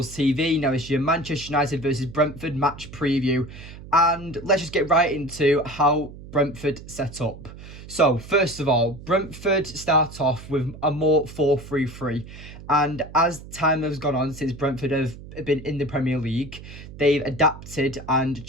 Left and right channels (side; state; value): right; noise; hum, 15 dB below the sound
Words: TV. Now it's your Manchester United versus Brentford match preview, and let's just get right into how Brentford set up. So first of all, Brentford start off with a more 4-3-3, and as time has gone on since Brentford have been in the Premier League, they've adapted and